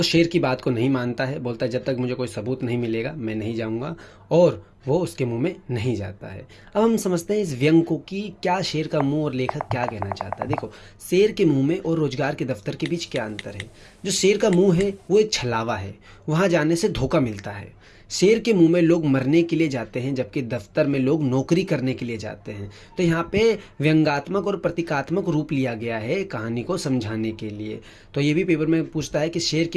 शेर की बात को नहीं मानता है, बोलता है जब तक मुझे कोई सबूत नहीं मिलेगा मैं नहीं जाऊंगा, और वो उसके मुंह में नहीं जाता है। अब हम समझते हैं इस व्यंग को कि क्या शेर का मुंह और लेखक क्या कहना चाहता है। देखो, शेर के मुंह में और रोजगार के दफ्तर के बीच क्या अंतर है। जो शेर का मुंह है वो एक छलावा है, वहाँ जाने से धोखा मिलता है। शेर के मुंह में लोग मरने के लिए जाते हैं, जबकि दफ्तर में लोग नौकरी करने के लिए जाते हैं। तो यहाँ पे व्यंग्यात्मक और प्रतीकात्मक रूप लिया गया है कहानी को समझाने के लिए। तो ये भी पेपर में पूछता है कि शेर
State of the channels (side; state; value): both; identical; correlation 1.00